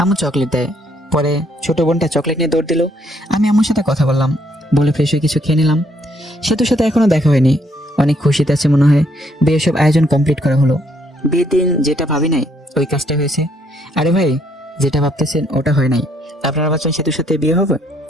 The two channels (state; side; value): normal; both; correlation 0.69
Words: আম্মু চকলেট দেয়। পরে ছোট বোনটা চকলেট নিয়ে দৌড় দিল। আমি আম্মুর সাথে কথা বললাম, বলে ফ্রেশ হয়ে কিছু খেয়ে নিলাম। সেতুর সাথে এখনো দেখা হয়নি, অনেক খুশিতে আছে মনে হয়। বিয়ের সব আয়োজন কমপ্লিট করা হলো। বিয়ের দিন যেটা ভাবি নাই ওই কাজটা হয়েছে। আরে ভাই, যেটা ভাবতেছেন ওটা হয় নাই। আপনারা ভাবছেন সেতুর সাথে বিয়ে হবে,